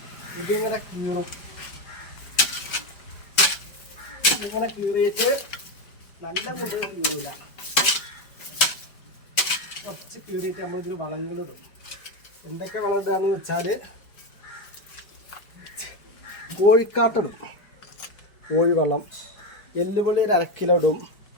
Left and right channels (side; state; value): right; late; 5.0 ms